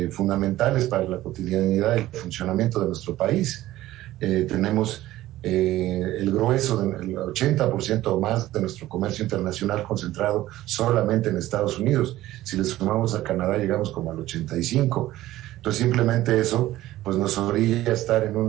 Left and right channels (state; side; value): quieter; left; 15.4 dB